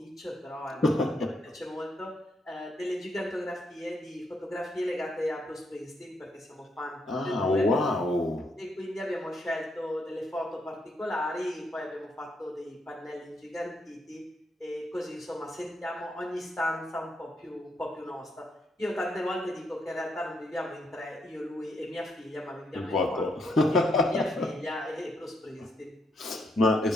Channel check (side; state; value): both; normal; correlation 0.76